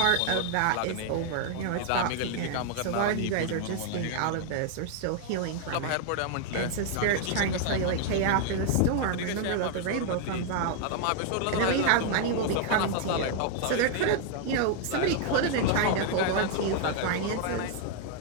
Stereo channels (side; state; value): both; different; correlation 0.00